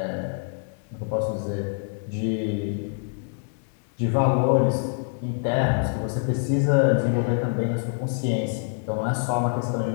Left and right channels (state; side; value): silent; right; 61 dB below the other